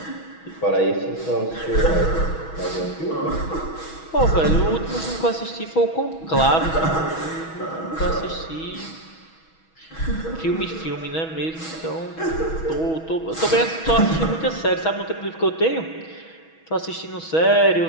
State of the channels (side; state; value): right; late; 6.2 ms